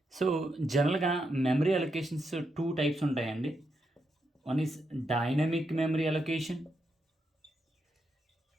So జనరల్గా memory allocations two types ఉంటాయండి. One is dynamic memory allocation,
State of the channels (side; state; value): both; normal; correlation 0.82